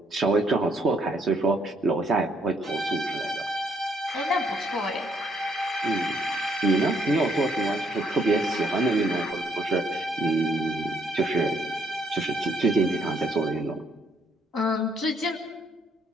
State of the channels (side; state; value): both; normal; correlation 0.70